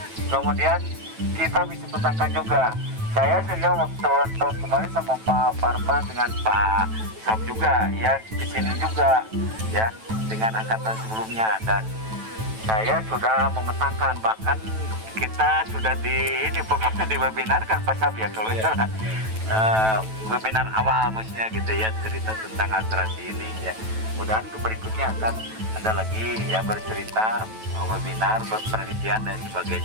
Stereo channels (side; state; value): left; late; 9.1 ms